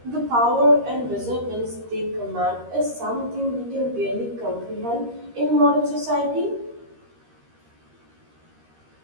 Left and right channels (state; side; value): late; left; 13 ms